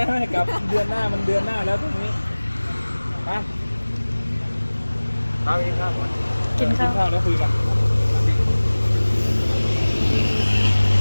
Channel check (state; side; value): inverted; both; correlation -1.00